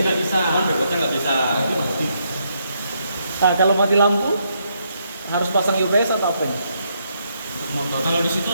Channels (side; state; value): both; inverted; correlation -0.76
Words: nggak bisa. Cuman backwash-nya nggak bisa. Nah, kalau mati lampu harus pasang UPS atau apa? Kalau di situ